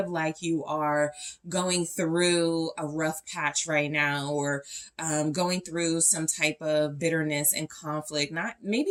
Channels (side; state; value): both; identical; correlation 1.00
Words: like you are going through a rough patch right now, or going through some type of bitterness and conflict.